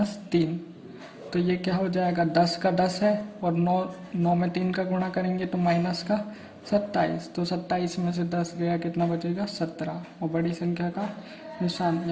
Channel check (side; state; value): both; identical; correlation 1.00